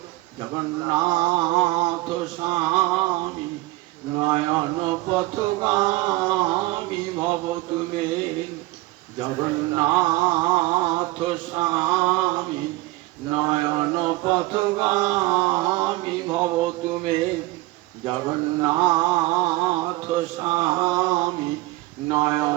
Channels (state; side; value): quieter; left; 20.2 dB